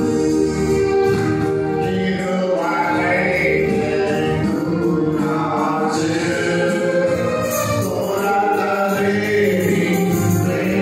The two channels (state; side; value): identical; both; correlation 1.00